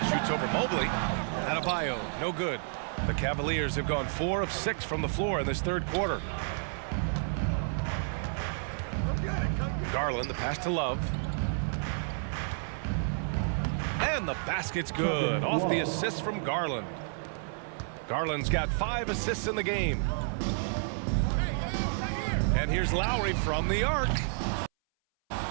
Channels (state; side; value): silent; left; 57 dB below the other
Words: Shoots over Mobley. Adebayo, no good. The Cavaliers have gone 4 of 6 from the floor in this third quarter. Garland, the pass to Love. And the basket's good. Off the assist from Garland. Garland's got 5 assists in the game. And here's Lowry from the arc.